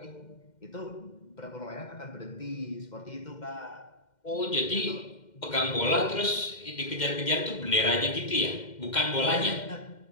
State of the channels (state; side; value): late; right; 2.1 ms